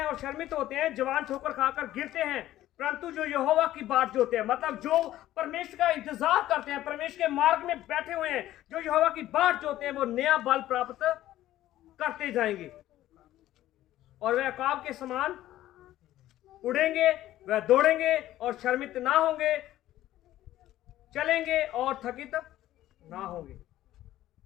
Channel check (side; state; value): right; quieter; 14.1 dB